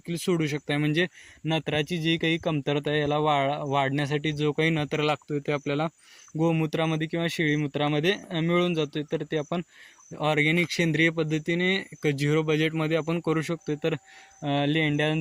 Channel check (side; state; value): both; identical; correlation 1.00